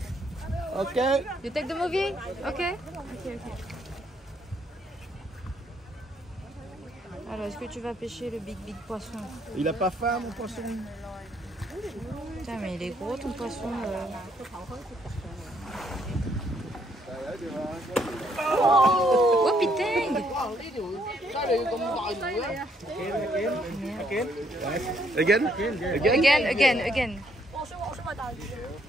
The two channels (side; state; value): both; normal; correlation 0.70